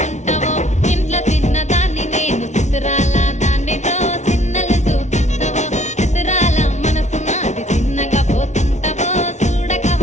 ఇంట్లో చిన్నదాన్ని నేను చిత్రాల దాన్ని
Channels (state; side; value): late; right; 0.33 ms